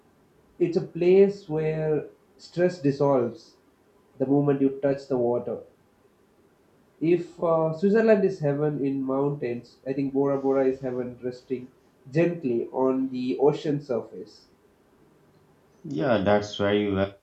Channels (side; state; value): both; identical; correlation 1.00